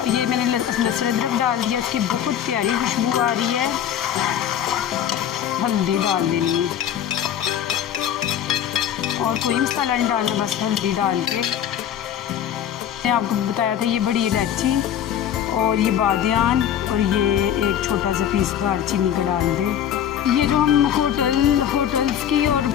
ये मैंने लहसुन अदरक डाल दिया, उसकी बहुत प्यारी खुशबू आ रही है। हल्दी डाल देनी है और कोई मसाला नहीं डालना, बस हल्दी डाल के। मैंने आपको बताया था ये बड़ी इलायची और ये बादियान और ये एक छोटा सा पीस दालचीनी का डाल दें। ये जो हम होटल्स की और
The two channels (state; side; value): quieter; right; 9.8 dB